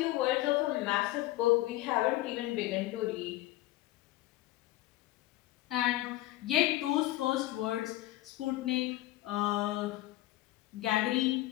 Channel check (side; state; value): right; quieter; 16.7 dB